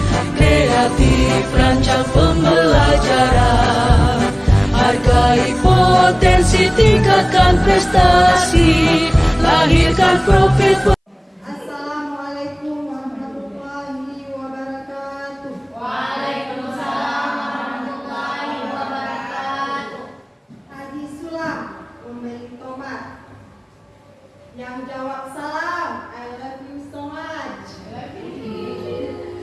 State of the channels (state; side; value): identical; both; correlation 1.00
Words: Kreatif rancang pembelajaran. Hargai potensi, tingkatkan prestasi. Lahirkan profit. Assalamualaikum warahmatullahi wabarakatuh. Waalaikumsalam warahmatullahi wabarakatuh. Haji Sulam memberi tomat. Yang jawab salam, I love you so much.